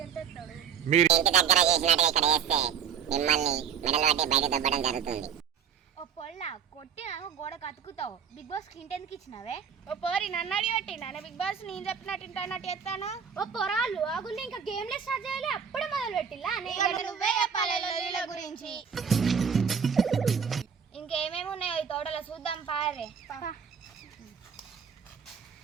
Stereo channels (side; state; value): left; quieter; 7.3 dB